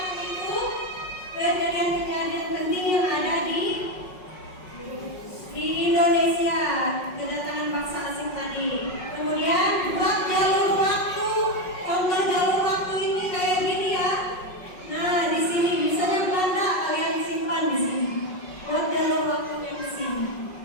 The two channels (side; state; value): right; late; 5.4 ms